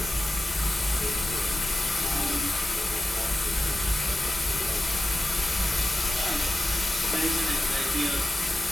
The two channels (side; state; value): both; normal; correlation 0.94